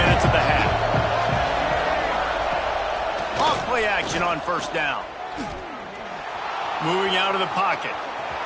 of the half. Off play action on first down. Moving out of the pocket.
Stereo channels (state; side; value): identical; both; correlation 1.00